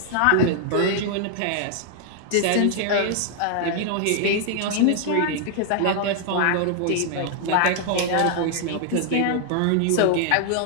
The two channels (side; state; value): both; different; correlation 0.00